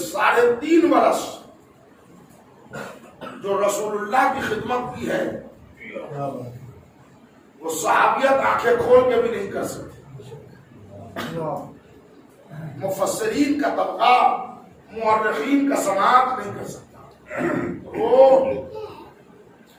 3.5 برس جو رسول اللہ کی خدمت کی ہے وہ صحابیت آنکھیں کھول کے بھی نہیں کر سکتے۔ مفسرین کا طبقہ، مورخین کا سماعت نہیں کر سکتا۔ وہ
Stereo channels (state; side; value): identical; both; correlation 1.00